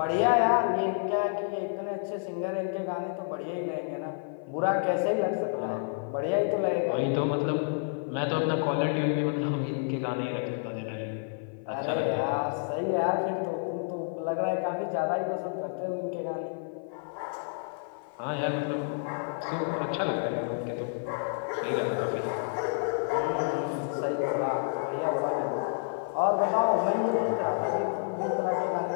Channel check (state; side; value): silent; right; 55 dB below the other